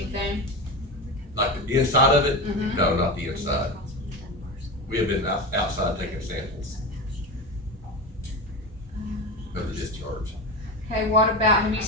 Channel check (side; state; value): both; normal; correlation 0.22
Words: Like the inside of it? Mhm. No, not the inside. We have been outside taking samples of the discharge. Okay, what about, have you